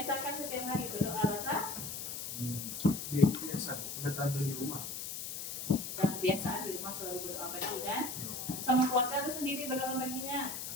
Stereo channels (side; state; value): left; noise; hiss, 6 dB below the sound